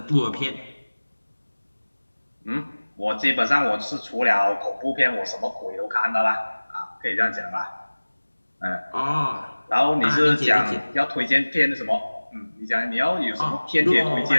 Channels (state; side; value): inverted; both; correlation -1.00